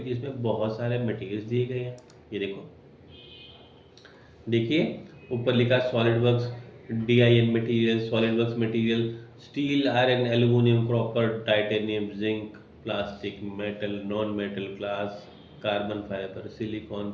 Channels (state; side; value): identical; both; correlation 1.00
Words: जिसमें बहुत सारे मटेरियल्स दिए गए हैं। ये देखो, देखिए ऊपर लिखा solid works DIN material, solid works material, steel, iron, aluminium, copper, titanium, zinc, plastic, metal, non metal, glass, carbon fibre, silicon,